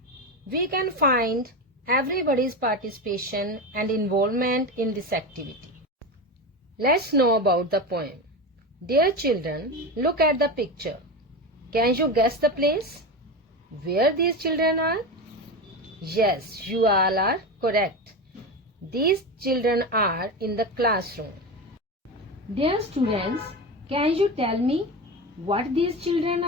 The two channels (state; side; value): normal; both; correlation 0.21